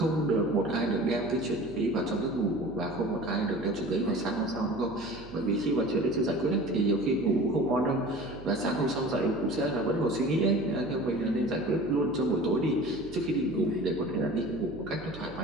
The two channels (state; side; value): noise; right; hum, 17 dB below the sound